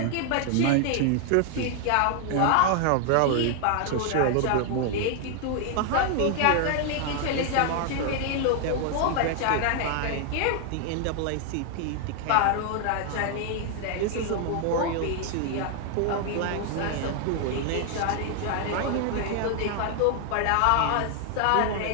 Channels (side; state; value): both; different; correlation 0.00